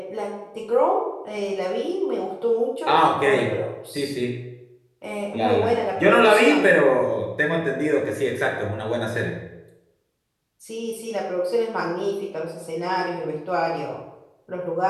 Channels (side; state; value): both; identical; correlation 1.00